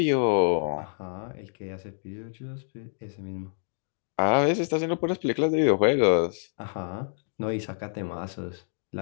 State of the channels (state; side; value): silent; right; digital silence